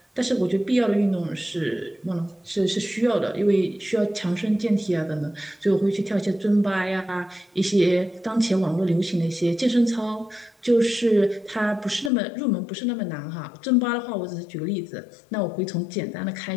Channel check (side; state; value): right; drops out; at 12.1 s